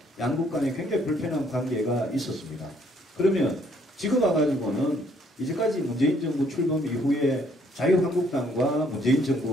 양국 간에 굉장히 불편한 관계가 있었습니다. 그러면 지금 와가지고는 이제까지 문재인 정부 출범 이후에 자유한국당과 문재인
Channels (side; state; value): both; normal; correlation 0.66